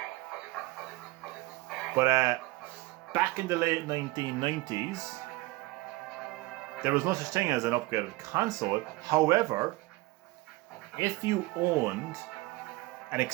But back in the late 1990s, there was no such thing as an upgraded console. However, if you owned an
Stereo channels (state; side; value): quieter; left; 21.0 dB